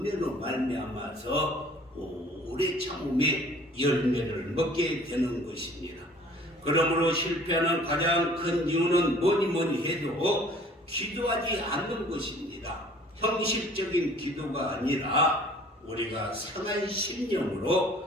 말미암아서 오래 참음의 열매를 먹게 되는 것입니다. 그러므로 실패하는 가장 큰 이유는 뭐니 해도 기도하지 않는 것입니다. 형식적인 기도가 아니라 우리가 상한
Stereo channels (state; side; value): normal; both; correlation 0.52